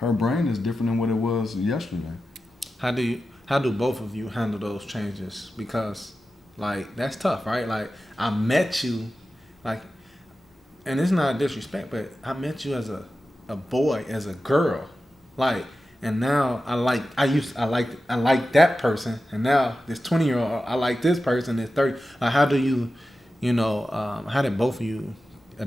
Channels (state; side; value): normal; both; correlation 0.93